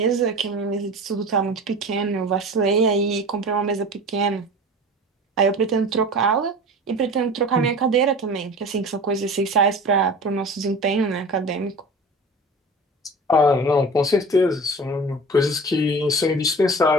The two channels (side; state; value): both; normal; correlation 0.36